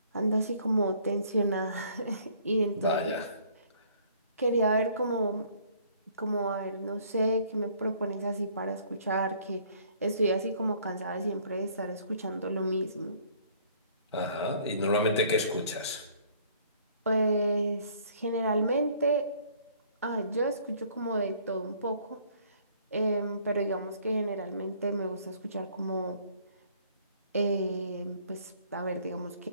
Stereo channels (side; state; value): both; inverted; correlation -0.59